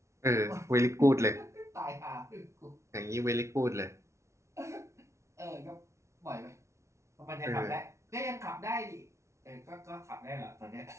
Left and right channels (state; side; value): late; left; 0.14 ms